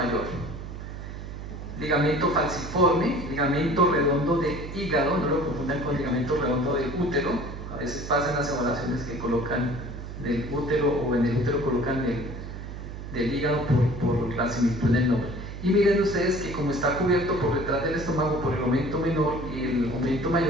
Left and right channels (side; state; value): right; noise; hum, 9 dB below the sound